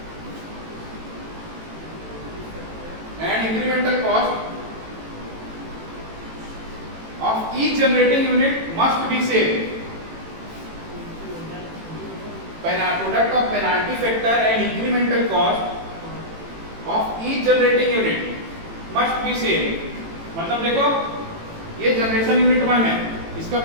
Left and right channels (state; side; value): late; left; 18 ms